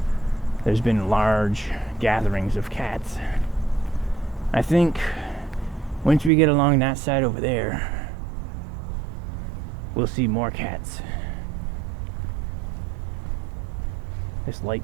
there's been large gatherings of cats. I think once we get along that side over there, we'll see more cats. This light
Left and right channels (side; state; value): left; drops out; at 6.3 s